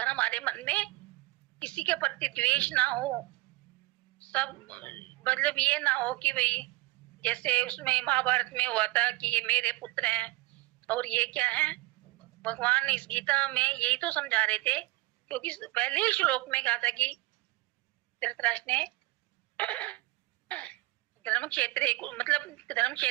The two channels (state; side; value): quieter; left; 20.5 dB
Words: हमारे मन में किसी के प्रति द्वेष ना हो, सब मतलब ये ना हो कि भाई जैसे उसमें महाभारत में हुआ था कि ये मेरे पुत्र हैं और ये क्या है, भगवान इस गीता में यही तो समझा रहे थे, क्योंकि पहले ही श्लोक में कहा था कि धृतराष्ट्र ने धर्म क्षेत्र मतलब धर्म